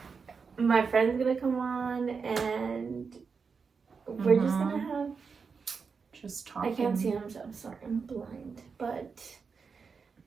My friend's gonna come on, and we're just gonna have just talking. I can't see him, so I'm sorry, I'm blind. But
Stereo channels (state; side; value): quieter; left; 5.4 dB